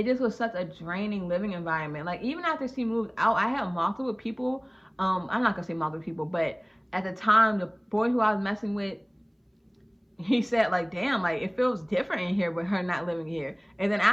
just was such a draining living environment. Like even after she moved out, I had multiple people. I'm not gonna say multiple people, but at the time, the boy who I was messing with, he said like, damn, like it feels different in here with her not living here. And then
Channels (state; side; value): identical; both; correlation 1.00